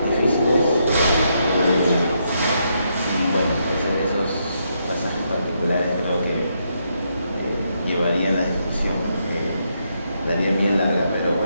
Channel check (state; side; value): inverted; both; correlation -0.79